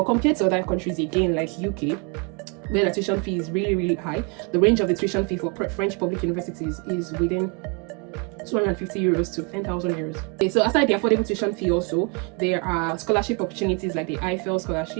compared to other countries, again, like UK, where the tuition fee is really high, the range of the tuition fee for French public universities is within 250 euros to 10,000 euros. Okay, so aside the affordable tuition fee, also there are scholarship opportunities like the Eiffel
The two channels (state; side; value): quieter; left; 33.0 dB